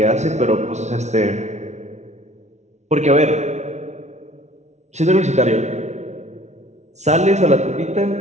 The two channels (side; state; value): left; late; 0.33 ms